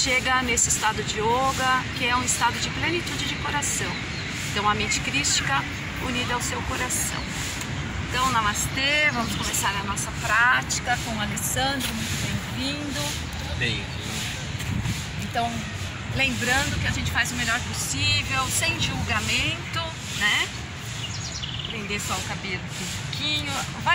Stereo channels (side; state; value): both; identical; correlation 1.00